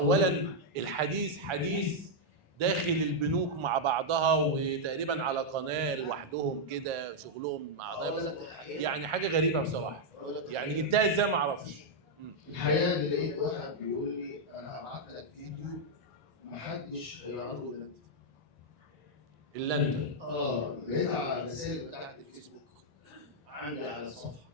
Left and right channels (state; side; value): normal; both; correlation -0.02